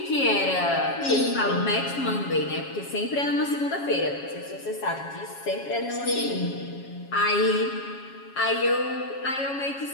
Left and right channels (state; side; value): late; right; 7.3 ms